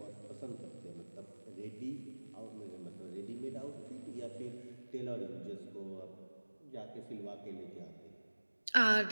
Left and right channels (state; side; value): inverted; both; correlation -1.00